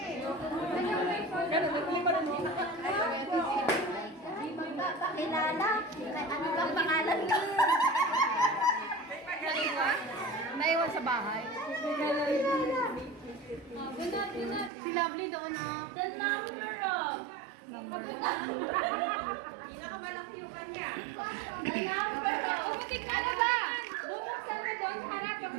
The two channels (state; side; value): drops out; left; at 14.7 s